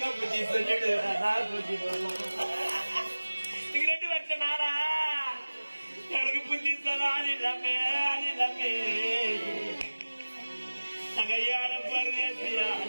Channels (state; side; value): inverted; both; correlation -1.00